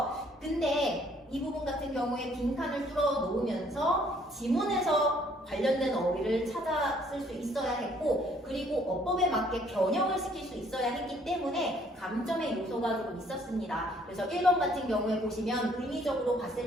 근데 이 부분 같은 경우에 빈칸을 뚫어 놓으면서 지문에서 관련된 어휘를 찾아 쓸 수 있어야 했고, 그리고 어법에 맞게 변형을 시킬 수 있어야 했기 때문에 감점의 요소가 조금 있었습니다. 그래서 1번 같은 경우에 보시면 의미적으로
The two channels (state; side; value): normal; both; correlation 0.63